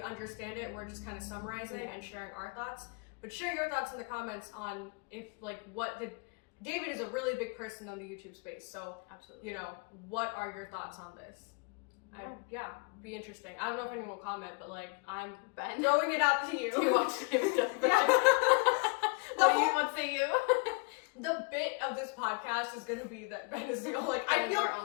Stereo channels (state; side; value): quieter; right; 31.7 dB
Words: understand it. We're just kind of summarizing and sharing our thoughts. But share your thoughts in the comments on if, like, David is a really big person on the YouTube space. So, absolutely, you know, what are your thoughts on this? Be interesting. I don't know if anyone will comment, but like I'm throwing it out to you. Do you watch David Dobrik? What say you? The bit of this podcast is gonna be that Ben is the only, like, I